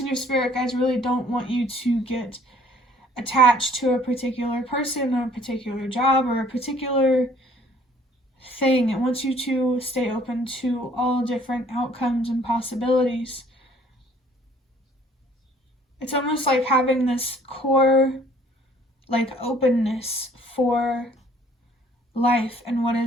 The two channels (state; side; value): normal; both; correlation 0.58